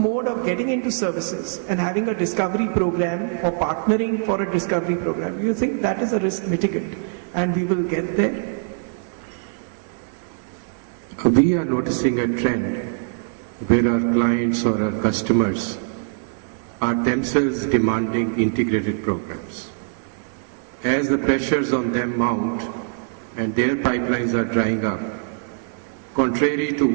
of getting into services and having a discovery program or partnering for a discovery program? Do you think that is a risk mitigant and we will get there? We are noticing a trend where our clients or our customers are themselves demanding integrated programs. As the pressures on them mount and their pipelines are drying up, contrary to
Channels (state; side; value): silent; left; digital silence